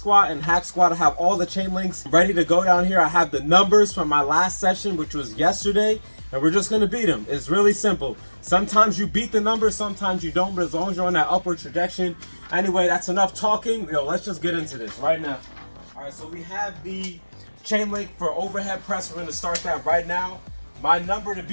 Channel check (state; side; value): inverted; both; correlation -1.00